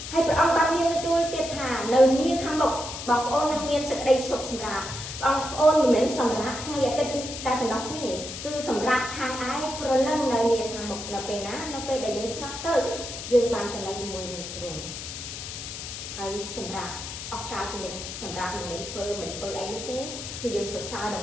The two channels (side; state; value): left; noise; hiss, 8 dB below the sound